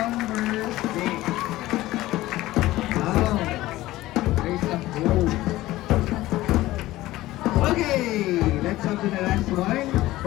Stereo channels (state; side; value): quieter; right; 16.8 dB